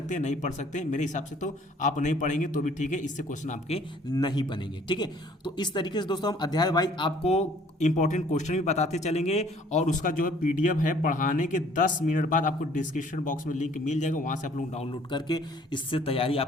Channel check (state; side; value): normal; both; correlation 0.57